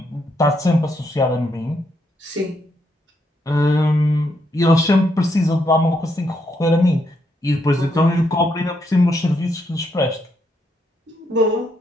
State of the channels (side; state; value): both; normal; correlation 0.77